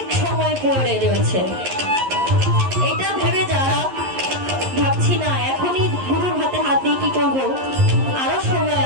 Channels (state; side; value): late; left; 11 ms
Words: সময় পড়ে রয়েছে, এটা ভেবে যারা ভাবছি না এখনই গুরুর হাতে হাত দিয়ে কি করবো, আরো সময়